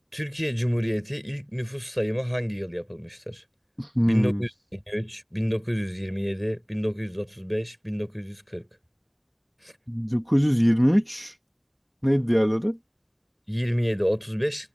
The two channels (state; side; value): identical; both; correlation 1.00